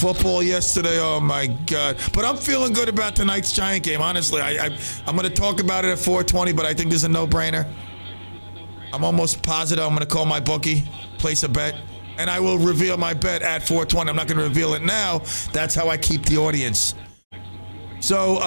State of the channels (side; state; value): both; inverted; correlation -1.00